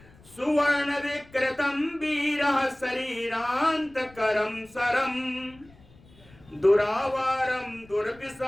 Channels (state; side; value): noise; left; rumble, 26 dB below the sound